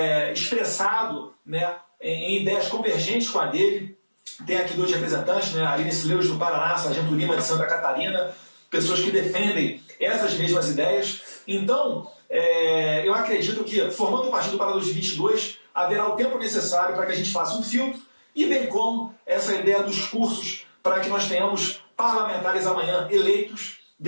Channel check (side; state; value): both; inverted; correlation -1.00